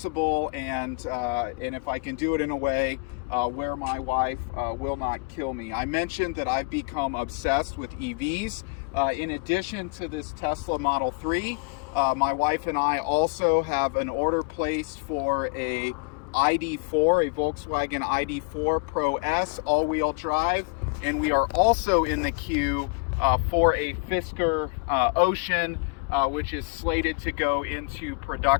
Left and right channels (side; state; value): right; quieter; 32.5 dB